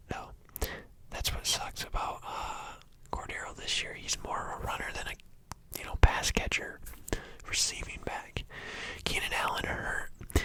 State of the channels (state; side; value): identical; both; correlation 1.00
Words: No. That's what sucks about Cordero this year. He's more of a runner than a pass catcher, receiving back. Keenan Allen hurt.